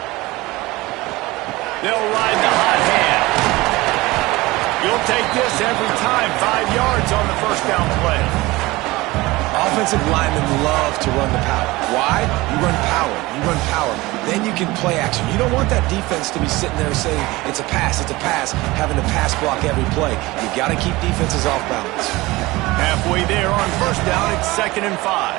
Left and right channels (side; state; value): left; quieter; 20.6 dB